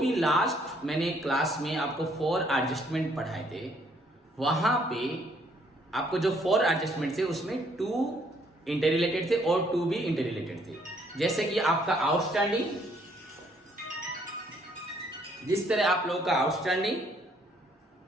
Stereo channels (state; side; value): normal; both; correlation 0.66